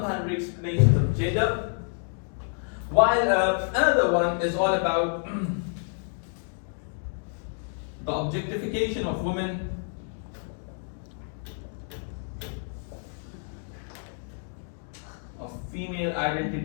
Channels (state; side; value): silent; right; 59 dB below the other